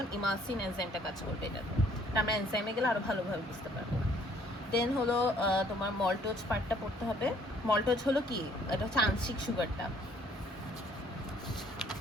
ইমালসিন এনজাইমটা কাজ করবে। এটা আমরা এনজাইমে গেলে আরও ভালোভাবে বুঝতে পারবো। দেন হলো তোমার মল্টোজ পার্টটা পড়তে হবে। মল্টোজ হলো কি? এটা হচ্ছে আংশিক সুগারটা।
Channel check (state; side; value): normal; both; correlation 0.61